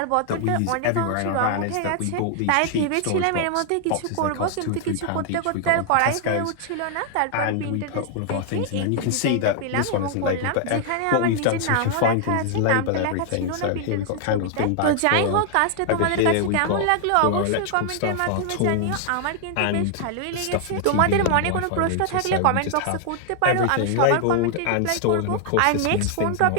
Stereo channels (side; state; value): both; different; correlation 0.00